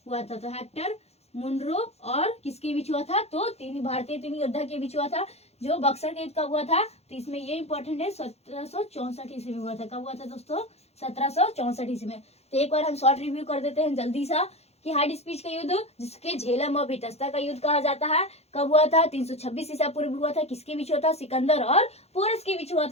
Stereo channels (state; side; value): late; right; 0.31 ms